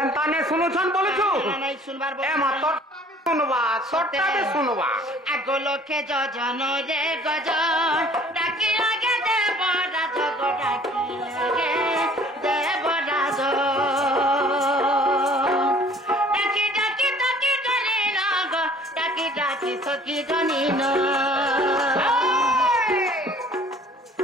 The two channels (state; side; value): normal; both; correlation 0.53